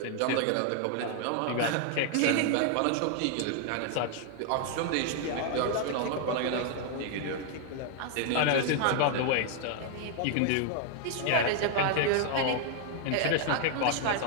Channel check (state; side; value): different; both; correlation 0.00